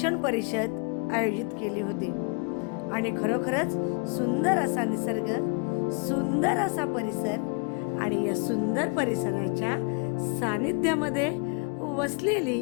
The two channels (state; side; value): quieter; right; 34.7 dB